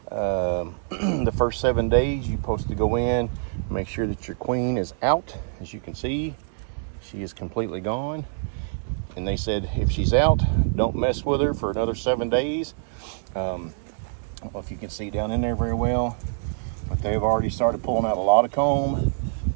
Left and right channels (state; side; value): silent; left; digital silence